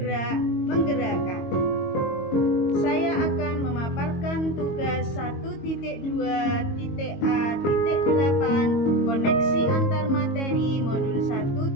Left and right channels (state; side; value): late; right; 22 ms